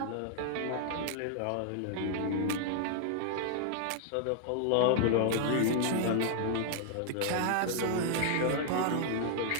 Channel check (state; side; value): different; both; correlation 0.00